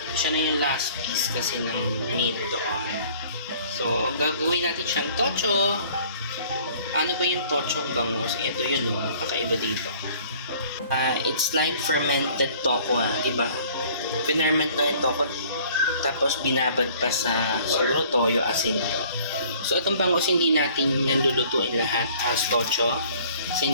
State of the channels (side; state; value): both; inverted; correlation -0.54